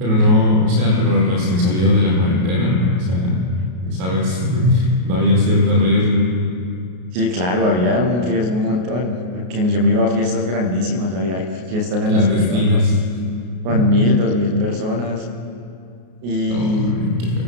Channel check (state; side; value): late; left; 33 ms